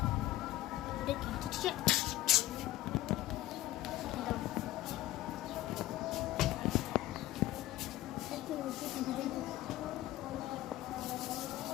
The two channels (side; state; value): right; quieter; 15.9 dB